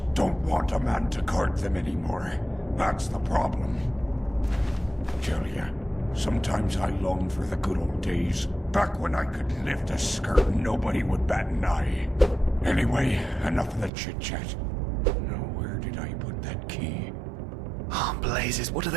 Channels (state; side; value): drops out; left; at 13.9 s